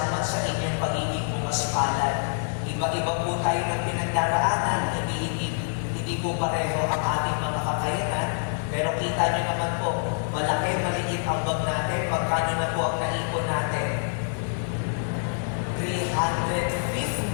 sa inyong pagiging pumaspalad. Iba-iba po tayo ng pinagdaraanan, hindi po pareho ang ating mga kakayanan, pero kita nyo naman po, malaki, maliit ang bag natin, magkano na po ang naipon natin?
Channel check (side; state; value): right; silent; digital silence